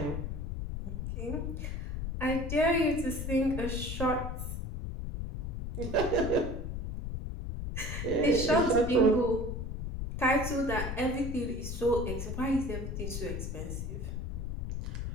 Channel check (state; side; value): noise; left; rumble, 4 dB below the sound